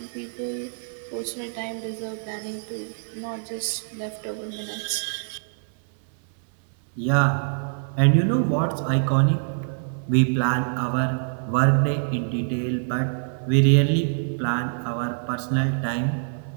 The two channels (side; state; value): left; silent; digital silence